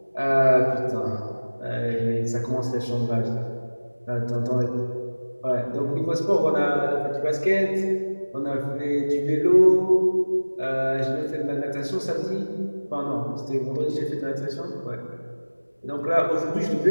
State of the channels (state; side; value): inverted; both; correlation -1.00